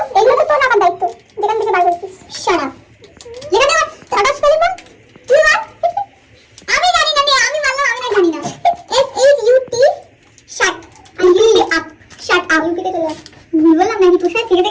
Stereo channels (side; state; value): both; identical; correlation 1.00